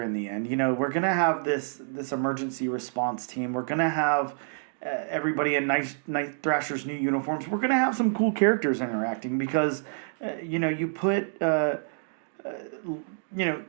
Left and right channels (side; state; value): left; silent; digital silence